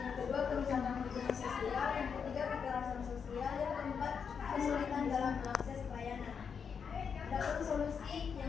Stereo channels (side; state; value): right; quieter; 6.5 dB